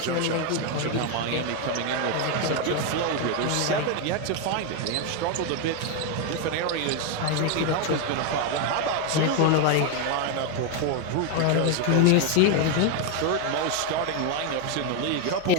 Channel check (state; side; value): different; both; correlation 0.01